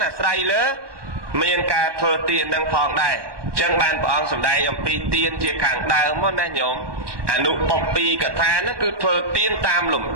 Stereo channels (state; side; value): late; left; 1.2 ms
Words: អាស្រ័យលើមានការធ្វើទាននឹងផងដែរអញ្ចឹងបានព្រះអង្គសម្ដែងអំពីទានជាខាងដើមមកណាញោមអនុបព្ពីកថានោះគឺធ្វើទានតាមលំ